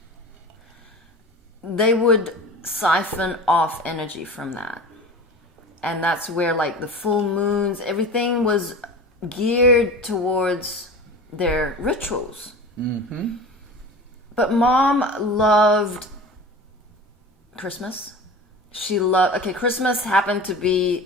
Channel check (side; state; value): both; normal; correlation 0.35